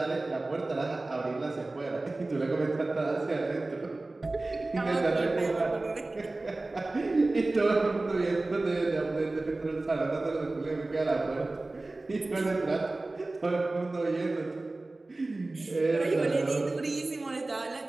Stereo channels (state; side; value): quieter; left; 3.0 dB